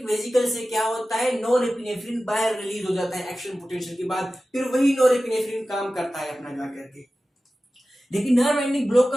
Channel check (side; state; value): both; normal; correlation 0.95